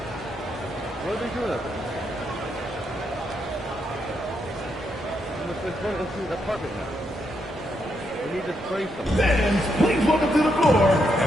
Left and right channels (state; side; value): normal; both; correlation 0.79